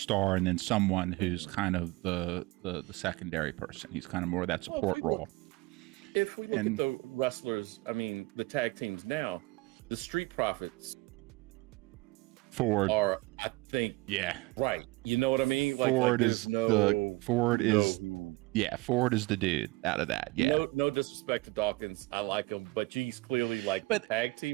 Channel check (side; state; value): left; quieter; 22.6 dB